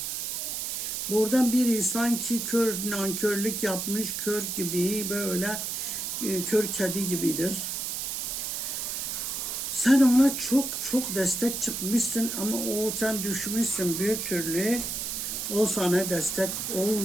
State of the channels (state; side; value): noise; right; hiss, 3 dB below the sound